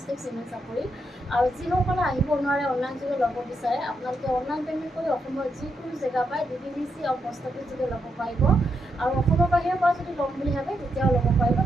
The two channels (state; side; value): normal; both; correlation 0.81